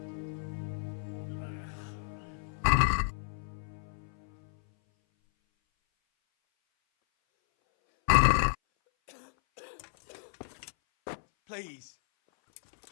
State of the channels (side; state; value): right; silent; 56 dB below the other